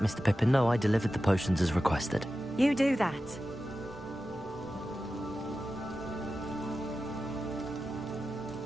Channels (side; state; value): right; noise; rumble, 25 dB below the sound